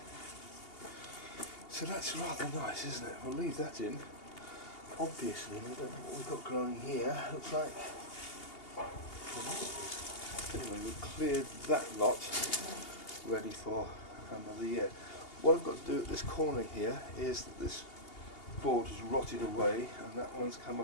So that's rather nice, isn't it? We'll leave that in. Obviously, we don't know what we've got growing here. Looks like. Anyway, we've cleared that lot, ready for another year. What I've got to do at this corner here is that this board has rotted away, and that one's come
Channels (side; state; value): right; late; 2.8 ms